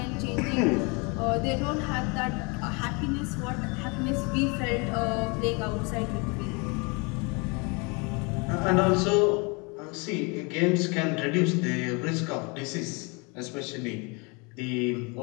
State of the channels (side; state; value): right; quieter; 30.5 dB